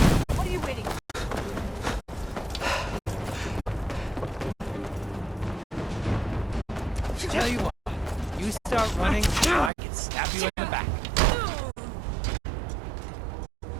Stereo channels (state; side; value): drops out; left; at 9.7 s